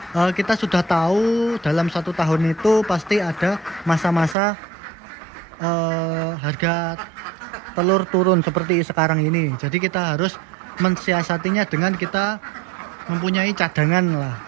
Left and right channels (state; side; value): drops out; left; at 4.4 s